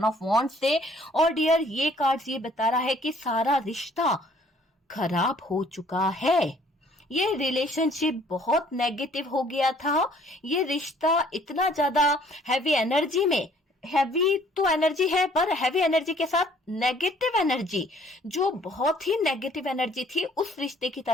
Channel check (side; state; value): both; normal; correlation 0.59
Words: ऑफ वॉन्ड्स से। और डियर ये कार्ड्स ये बता रहा है कि सारा रिश्ता खराब हो चुका है। ये रिलेशनशिप बहुत नेगेटिव हो गया था। ये रिश्ता इतना ज्यादा हैवी एनर्जी में, हैवी तो एनर्जी है पर हैवी एनर्जी के साथ नेगेटिव एनर्जी, जो बहुत ही नेगेटिव एनर्जी थी, उस रिश्ते की